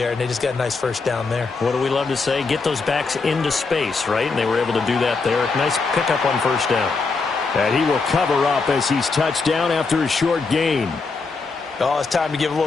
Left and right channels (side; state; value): right; quieter; 4.3 dB